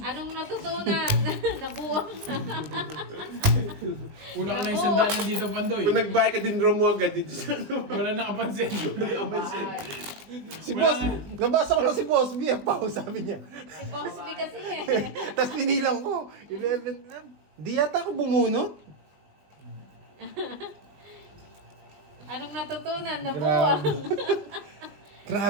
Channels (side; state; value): left; late; 20 ms